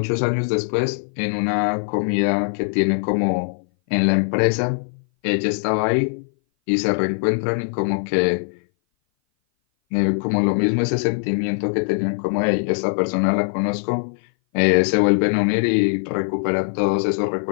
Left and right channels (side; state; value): right; silent; 59 dB below the other